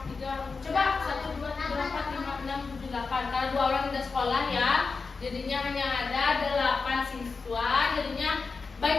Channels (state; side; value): quieter; right; 4.5 dB